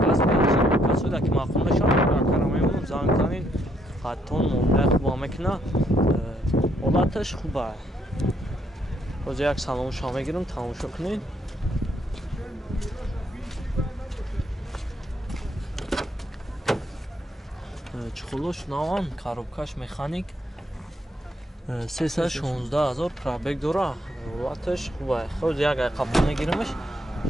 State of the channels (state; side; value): normal; both; correlation 0.72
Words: газ бензин касода ки мақбул мешавад карамаем занг занин хаттон муомила хуба мекуна ҳолаташ хуба боз як салом шумо мегирам тамошо кунед чухулош наван коробкаш механик 316,000 пробег дора ҳолаташ хуба ход як қабул мегирамаш